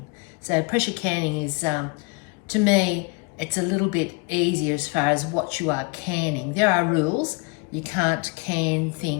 So pressure canning is, to me, it's a little bit easier as far as what you are canning. There are rules. You can't can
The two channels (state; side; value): quieter; right; 31.3 dB